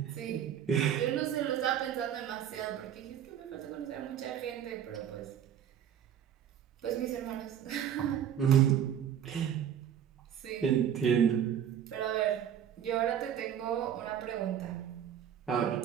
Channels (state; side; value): quieter; left; 9.4 dB